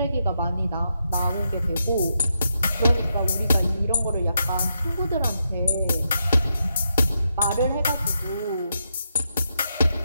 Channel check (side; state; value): both; inverted; correlation -0.83